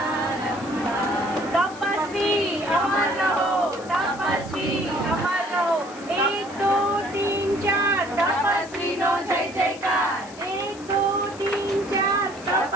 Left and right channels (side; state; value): left; noise; hiss, 20 dB below the sound